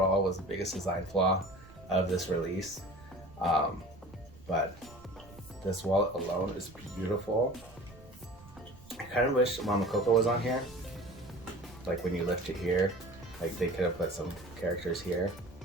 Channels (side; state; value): right; noise; rumble, 21 dB below the sound